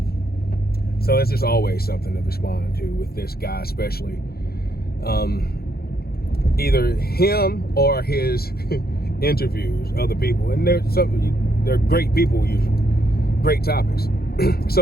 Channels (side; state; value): right; late; 0.45 ms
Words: So it's just always something to respond to with this guy, especially. Either him or his interviews, other people, and they're great people usually. Great topics.